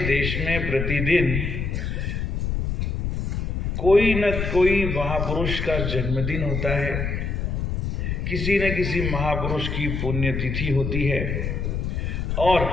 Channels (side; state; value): left; noise; rumble, 2 dB below the sound